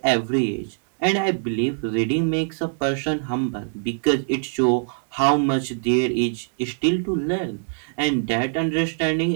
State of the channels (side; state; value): left; silent; digital silence